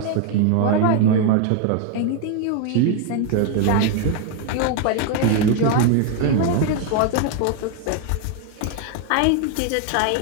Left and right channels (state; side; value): different; both; correlation 0.01